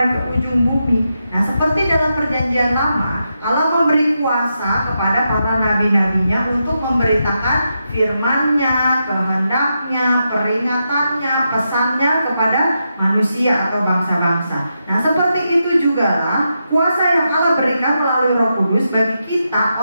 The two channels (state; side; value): inverted; both; correlation -0.85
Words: ke ujung bumi. Nah, seperti dalam perjanjian lama, Allah memberi kuasa kepada para nabi-nabinya untuk memberitakan firman-Nya, kehendak-Nya, peringatannya, pesannya kepada manusia atau bangsa-bangsa. Nah, seperti itu jugalah kuasa yang Allah berikan melalui Roh Kudus bagi kita